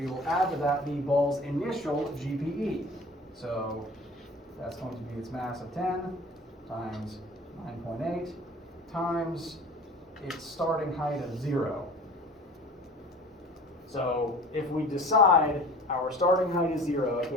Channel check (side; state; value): both; normal; correlation 0.42